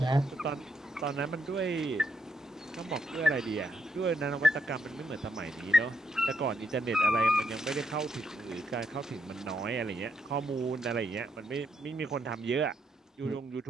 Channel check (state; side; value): normal; both; correlation 0.77